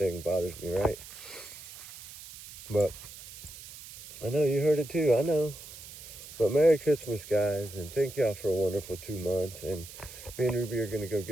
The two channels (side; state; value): right; noise; hiss, 15 dB below the sound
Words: bothers me, right? But I know you heard it too, I know. But Merry Christmas, guys, and thank y'all for a wonderful 2 months. And me and Ruby are gonna go